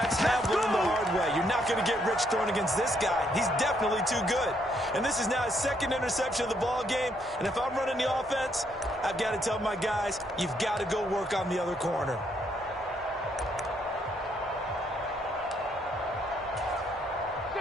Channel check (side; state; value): both; normal; correlation 0.72